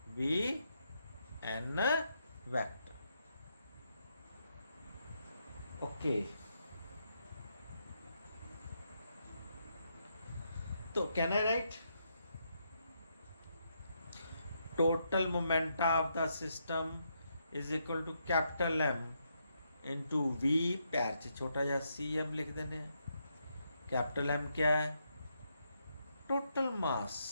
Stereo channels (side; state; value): both; inverted; correlation -0.79